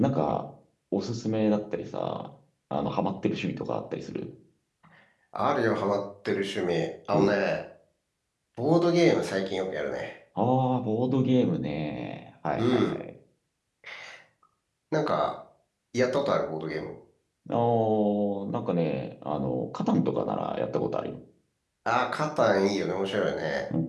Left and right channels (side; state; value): both; identical; correlation 1.00